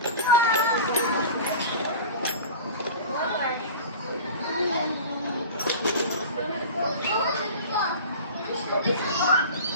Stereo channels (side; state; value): both; inverted; correlation -0.35